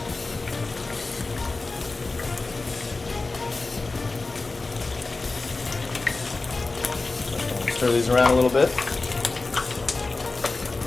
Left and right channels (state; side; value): quieter; right; 3.5 dB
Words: Stir these around a little bit.